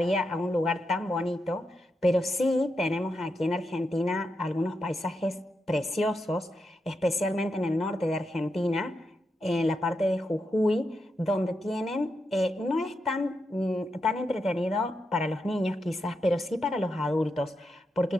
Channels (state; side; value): normal; both; correlation 0.85